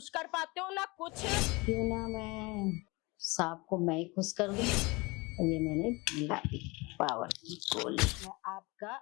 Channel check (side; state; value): right; quieter; 25.2 dB